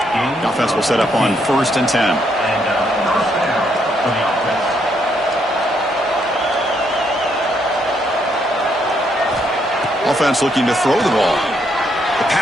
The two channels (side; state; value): both; normal; correlation 0.74